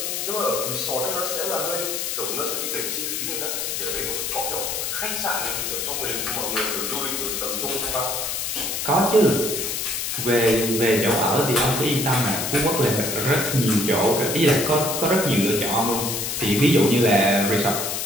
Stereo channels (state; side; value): noise; left; hiss, 2 dB below the sound